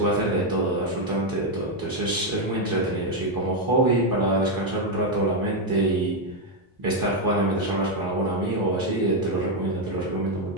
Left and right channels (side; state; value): both; normal; correlation 0.03